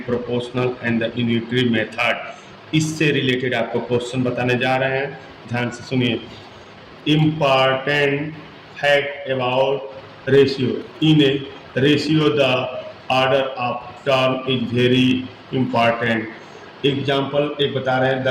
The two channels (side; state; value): both; identical; correlation 1.00